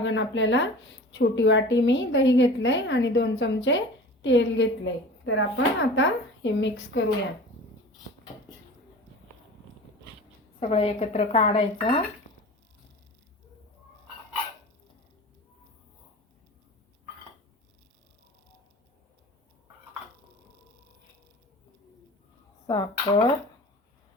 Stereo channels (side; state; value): both; normal; correlation 0.38